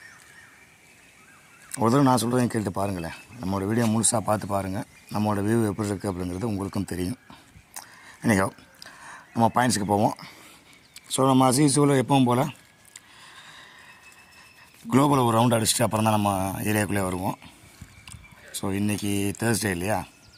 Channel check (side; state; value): both; identical; correlation 1.00